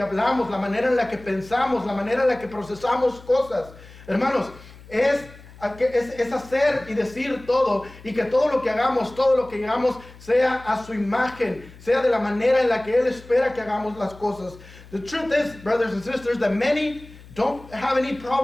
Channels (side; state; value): left; noise; hum, 20 dB below the sound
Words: hablamos, la manera en la que pensamos, la manera en la que procesamos cosas. Hermanos, es hacer y decir todo, y que todo lo que hagamos sea a su imagen, sea de la manera en la que Él espera que hagamos las cosas. The truth is, brothers and sisters, that many don't have any